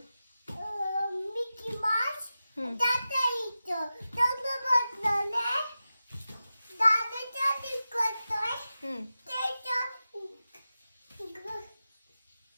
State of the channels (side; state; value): both; inverted; correlation -0.93